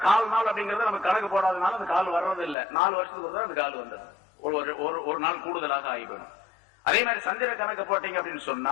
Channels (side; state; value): right; drops out; at 2.6 s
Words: கால் நாள் அப்படிங்கறது நம்ம கணக்கு போடாதனால அந்த கால் வர்றது இல்ல. 4 வருஷத்துக்கு ஒரு அந்த கால் வந்துடும். ஒரு நாள் கூடுதலாக ஆகி போயிடும். அதே மாதிரி சந்திர கணக்கு போட்டீங்க அப்படின்னு